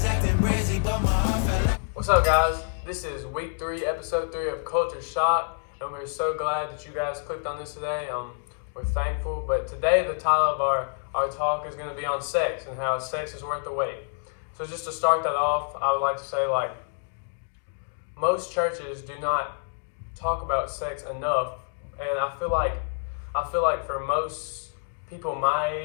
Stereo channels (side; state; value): right; silent; digital silence